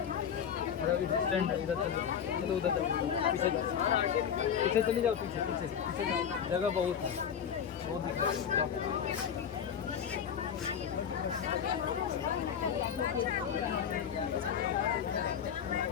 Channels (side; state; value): right; quieter; 8.1 dB